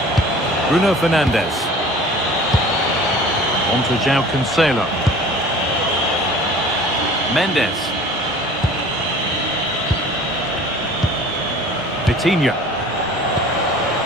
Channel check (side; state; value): both; normal; correlation 0.45